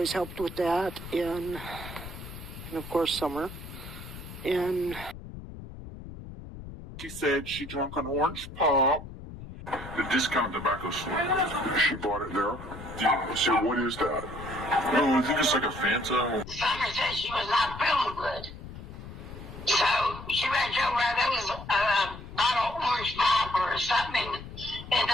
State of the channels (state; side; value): noise; left; rumble, 13 dB below the sound